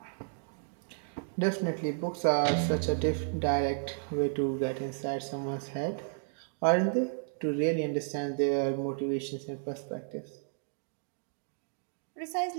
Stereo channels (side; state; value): left; silent; digital silence